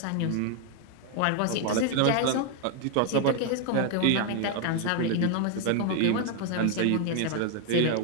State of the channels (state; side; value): different; both; correlation 0.00